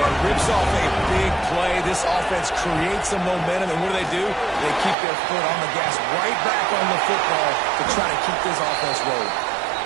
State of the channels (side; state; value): left; drops out; at 5.0 s